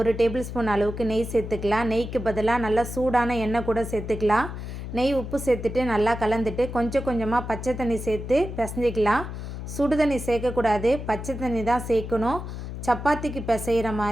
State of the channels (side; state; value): left; noise; hum, 8 dB below the sound